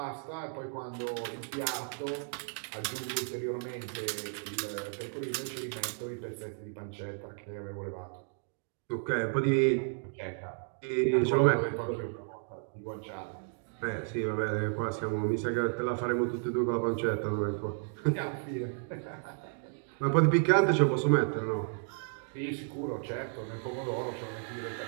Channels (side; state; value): left; silent; 56 dB below the other